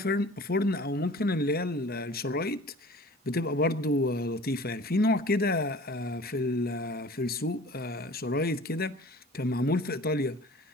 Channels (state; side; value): normal; both; correlation 0.45